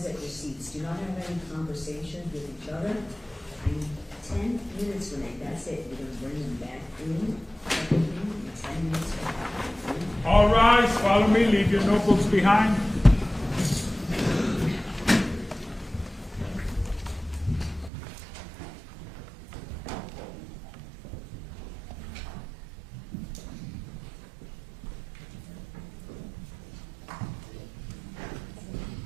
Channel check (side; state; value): left; drops out; at 17.9 s